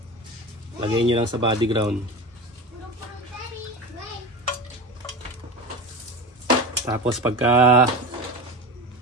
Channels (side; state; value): both; normal; correlation 0.27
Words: Lagay nyo lang sa body ground. Tapos pagka